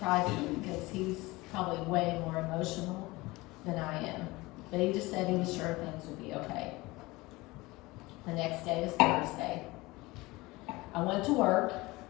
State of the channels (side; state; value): right; quieter; 21.4 dB